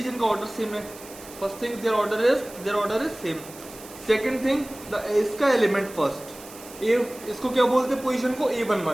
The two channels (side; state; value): right; noise; hiss, 17 dB below the sound